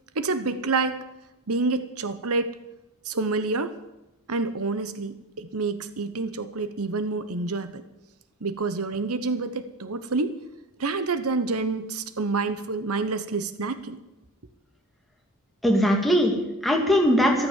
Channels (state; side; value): normal; both; correlation 0.35